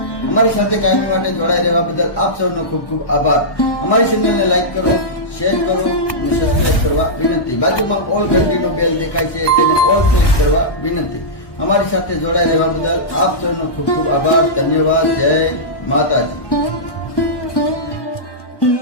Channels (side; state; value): right; late; 1.2 ms